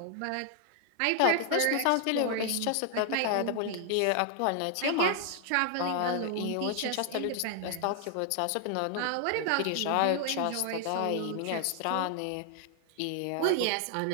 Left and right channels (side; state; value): both; different; correlation 0.00